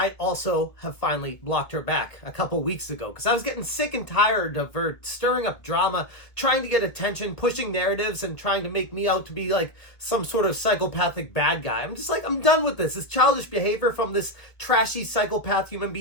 also have finally blocked her back a couple weeks ago because I was getting sick and tired of her stirring up drama, trying to get attention, pushing narratives, and trying to make me out to be like some sort of psychopathic bad guy. I'm just like, I'm done with this. It's childish behavior from this trashy psychopath human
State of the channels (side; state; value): right; late; 1.5 ms